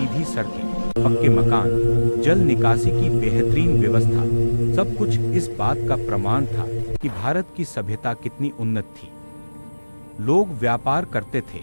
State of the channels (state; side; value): inverted; both; correlation -1.00